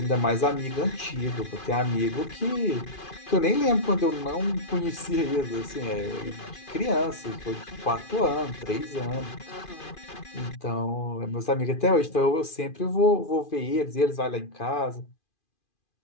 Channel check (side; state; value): right; late; 2.4 ms